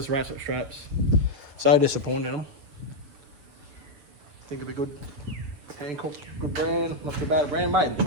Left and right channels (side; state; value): left; late; 7.0 ms